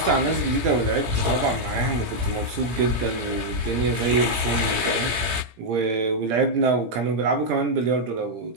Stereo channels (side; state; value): left; late; 17 ms